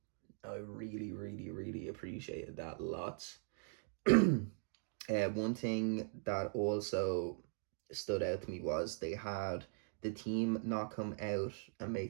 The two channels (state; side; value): silent; left; 51 dB below the other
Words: I really, really, really appreciated that lots. One thing that also stood out to me was they had the team not come out and